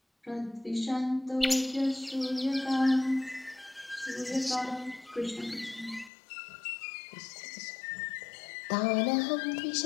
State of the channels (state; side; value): drops out; right; at 6.1 s